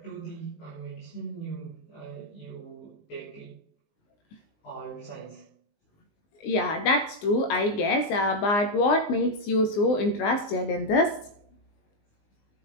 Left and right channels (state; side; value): late; right; 19 ms